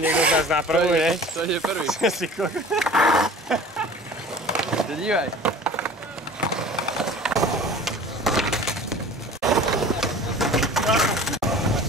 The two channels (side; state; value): both; normal; correlation 0.43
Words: niekto z nás na prvú, nie? To je prvý. Dívaj.